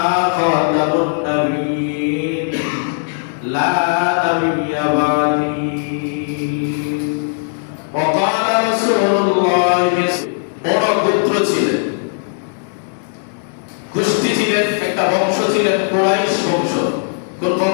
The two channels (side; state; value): right; silent; digital silence